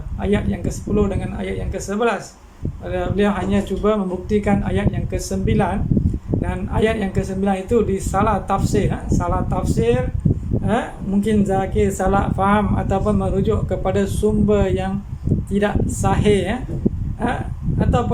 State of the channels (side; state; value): both; identical; correlation 1.00